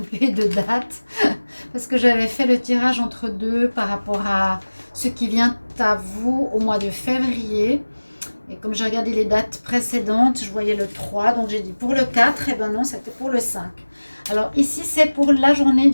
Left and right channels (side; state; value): both; inverted; correlation -1.00